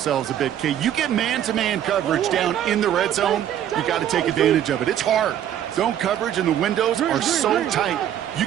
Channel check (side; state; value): left; quieter; 10.7 dB